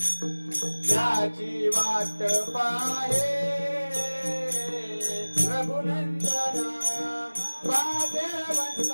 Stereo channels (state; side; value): inverted; both; correlation -1.00